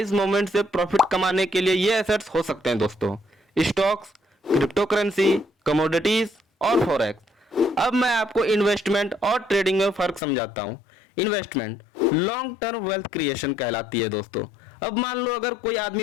मूवमेंट से प्रॉफिट कमाने के लिए ये एसेट्स हो सकते हैं दोस्तों, स्टॉक्स, क्रिप्टो करेंसी, कमोडिटीज और फॉरेक्स। अब मैं आपको इन्वेस्टमेंट और ट्रेडिंग में फर्क समझाता हूँ। Investment long term wealth creation कहलाती है दोस्तों। अब मान लो अगर कोई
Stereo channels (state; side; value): drops out; right; at 10.2 s